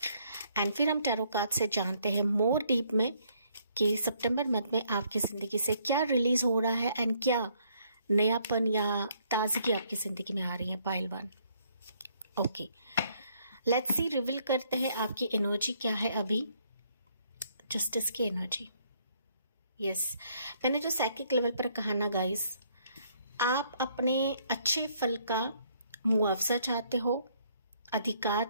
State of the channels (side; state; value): both; inverted; correlation -0.67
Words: एंड फिर हम टैरो कार्ड से जानते हैं मोर डीप में कि सितंबर मंथ में आपकी ज़िंदगी से क्या रिलीज हो रहा है एंड क्या नयापन या ताजगी आपकी ज़िंदगी में आ रही है। Pile 1। Okay, let's see, reveal करते हैं आपकी एनर्जी क्या है अभी। जस्टिस की एनर्जी। यस, मैंने जो साइकिक लेवल पर कहा ना गाइस, आप अपने अच्छे फल का मुआवजा चाहते हो, अधिकार